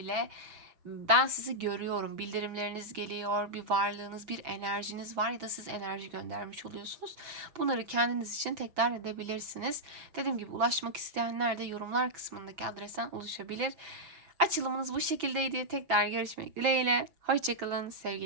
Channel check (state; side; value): late; left; 6.1 ms